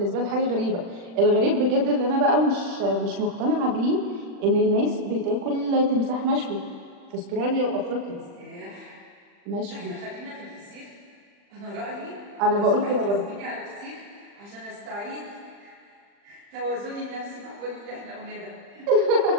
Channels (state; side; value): late; left; 40 ms